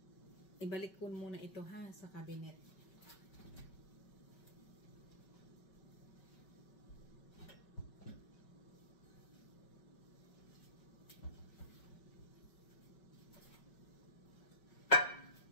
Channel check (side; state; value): right; late; 5.3 ms